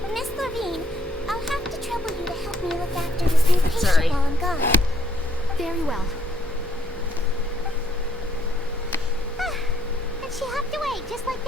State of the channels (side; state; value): both; normal; correlation 0.69